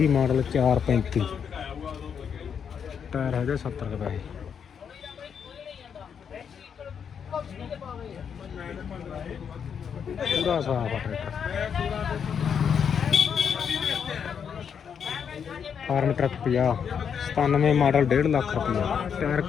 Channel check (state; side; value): quieter; right; 7.3 dB